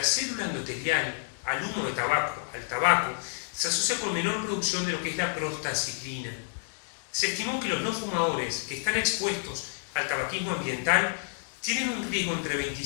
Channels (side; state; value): right; silent; digital silence